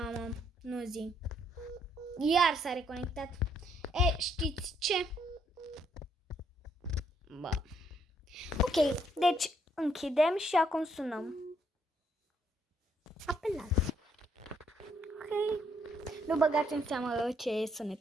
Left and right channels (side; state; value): both; normal; correlation 0.71